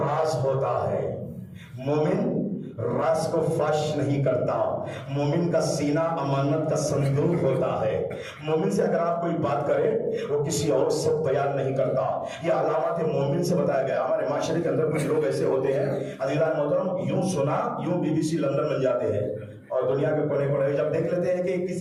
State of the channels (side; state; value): both; identical; correlation 1.00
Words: ہوتا ہے. مومن راز کو فاش نہیں کرتا. مومن کا سینہ امانت کا صندوق ہوتا ہے. مومن سے اگر آپ کوئی بات کرے وہ کسی اور سے بیان نہیں کرتا. یہ علامات مومن سے بتایا گیا. ہمارے معاشرے کے اندر کچھ لوگ ایسے ہوتے ہیں عزیزان محترم، یوں سنا یوں BBC لندن بن جاتے ہیں اور دنیا کے کونے کونے جب دیکھ لیتے ہیں کہ